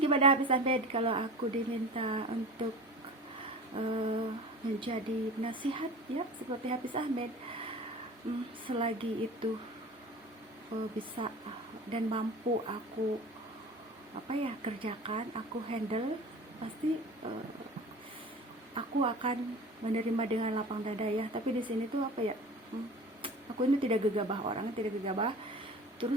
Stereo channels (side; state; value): both; normal; correlation 0.37